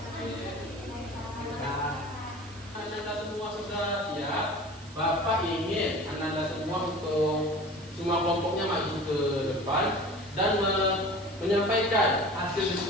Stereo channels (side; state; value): right; noise; hiss, 22 dB below the sound